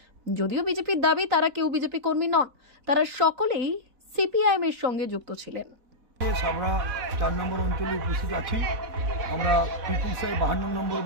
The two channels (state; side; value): late; left; 4.1 ms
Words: যদিও বিজেপির দাবি তারা কেউ বিজেপি কর্মী নন, তারা সকলেই সিপিআইএম এর সঙ্গে যুক্ত ছিলেন। সাবড়া 4 নম্বর অঞ্চলে উপস্থিত আছি। আমরা পিপুল সাই 52 নম্বর